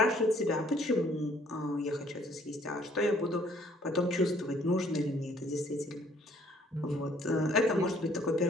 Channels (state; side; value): normal; both; correlation 0.61